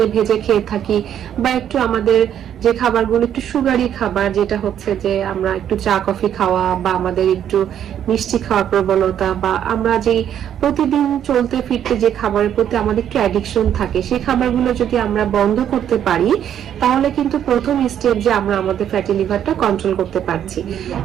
ভেজে খেয়ে থাকি, বা একটু আমাদের যে খাবারগুলো একটু সুগারি খাবার, যেটা হচ্ছে যে আমরা একটু চা কফি খাওয়া বা আমাদের একটু মিষ্টি খাওয়ার প্রবণতা, বা আমরা যে প্রতিদিন চলতে ফিরতে যে খাবারের প্রতি আমাদের একটু অ্যাডিকশন থাকে, সেই খাবারগুলো যদি আমরা বন্ধ করতে পারি তাহলে কিন্তু প্রথম স্টেপ যে আমরা আমাদের ফ্যাটি লিভারটা কন্ট্রোল করতে পারছি।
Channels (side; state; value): left; quieter; 9.9 dB